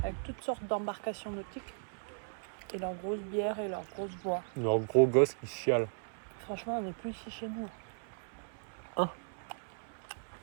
avec toutes sortes d'embarcations nautiques. Et leurs grosses bières et leurs grosses bois. Leurs gros gosses qui chialent. Franchement, on n'est plus ici chez nous. Hein?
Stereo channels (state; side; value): silent; left; 54 dB below the other